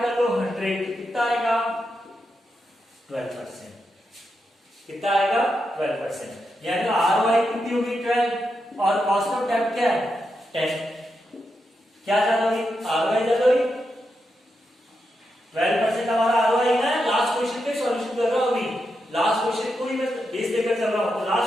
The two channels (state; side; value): normal; both; correlation 0.85